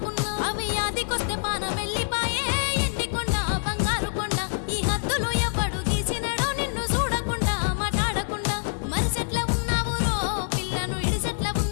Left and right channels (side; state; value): right; silent; 57 dB below the other